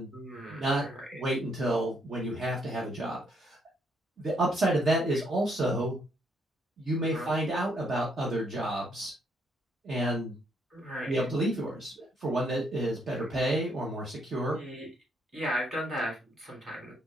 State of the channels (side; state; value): both; normal; correlation 0.72